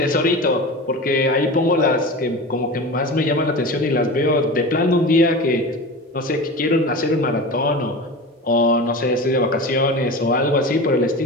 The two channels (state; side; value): normal; both; correlation 0.30